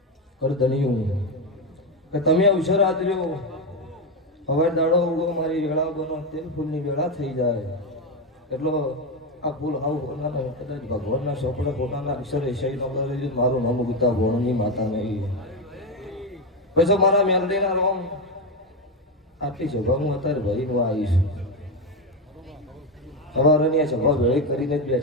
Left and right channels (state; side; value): normal; both; correlation 0.11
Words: કરધણિયું કે તમે અવસર આદર્યો હવે દાડો ઉગો મારી વેળા બનો તેલ ફૂલની વેળા થઈ જાય એટલો આ ફૂલ આવું હોનાના કદાચ ભગવાનના ચોપડા પોતાના અક્ષર એસાઈ નો મારું નામ ઉગતા ભોણની માતા નહીં પછી મારા મેલડીના રોમ આટલી સભા હું અત્યારે ભરીને આવીશ સવારની સભા ભેળી કરીને જ